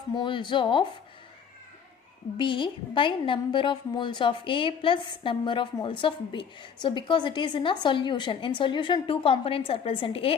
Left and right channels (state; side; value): quieter; right; 7.1 dB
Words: moles of B by number of moles of A plus number of moles of B. So because it is in a solution, in solution two components are present, A